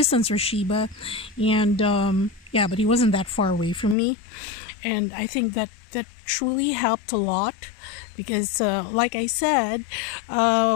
RASHEEBA, and yeah, but he wasn't that far away from me, and I think that truly helped a lot because like I said,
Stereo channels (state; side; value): drops out; right; at 4.0 s